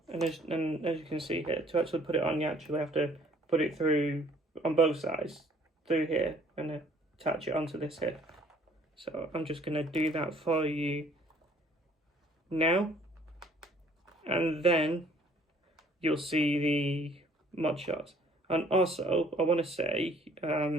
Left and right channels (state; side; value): normal; both; correlation 0.59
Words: as you can see here, to actually put it on, you actually have to put it through on both sides through here and attach it onto this here. So I'm just going to do that for you now, and then you'll see the mod shots. And also, I want to say,